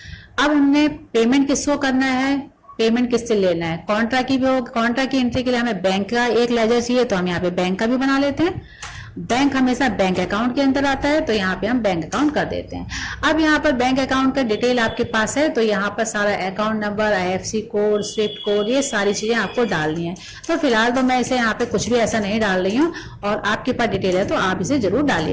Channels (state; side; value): identical; both; correlation 1.00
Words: अब हमने पेमेंट किसको करना है, पेमेंट किससे लेना है, कॉन्ट्रा की भी हो, कॉन्ट्रा की एंट्री के लिए हमें बैंक का एक लेजर चाहिए तो हम यहाँ पे बैंक का भी बना लेते हैं बैंक हमेशा बैंक अकाउंट के अंदर आता है, तो यहाँ पे हम बैंक अकाउंट कर देते हैं। अब यहाँ पर बैंक अकाउंट का डिटेल आपके पास है, तो यहाँ पर सारा account number, IFSC code, Swift code, ये सारी चीजें आपको डालनी है। तो फिलहाल तो मैं इसे यहाँ पे कुछ भी ऐसा नहीं डाल रही हूँ, और आपके पास डिटेल है तो आप इसे जरूर